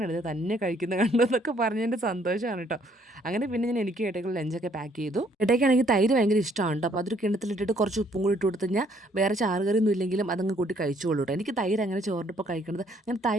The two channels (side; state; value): both; normal; correlation 0.65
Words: തന്നെ കഴിക്കുന്ന കണ്ടെന്നൊക്കെ പറഞ്ഞതിൻ്റെ സന്തോഷമാണ് കേട്ടോ. അങ്ങനെ പിന്നെ ഞാൻ എനിക്ക് ഏട്ടയ്ക്കുള്ള ലഞ്ചൊക്കെ പാക്ക് ചെയ്തു. ഏട്ടയ്ക്കാണെങ്കിൽ തൈര് ഭയങ്കര ഇഷ്ടമാണ് കേട്ടോ. അപ്പോൾ അതൊരു കിണ്ണത്തിലിട്ടിട്ട് കുറച്ച് ഉപ്പും കൂടി ഇട്ട് കൊടുത്തു കഴിഞ്ഞാൽ വേറെ ചാറുകറിയൊന്നും ഇല്ലെങ്കിലും അതങ്ങ് കൂട്ടി കഴിച്ചോളൂ കേട്ടോ. എനിക്ക് തൈര് അങ്ങനെ ചോറിൻ്റെ ഇപ്പോൾ കഴിക്കുന്നത്